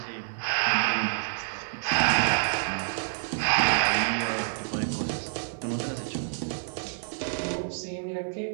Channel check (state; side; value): silent; left; digital silence